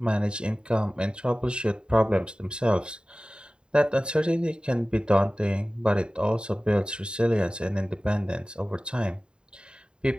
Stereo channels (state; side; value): late; left; 0.051 ms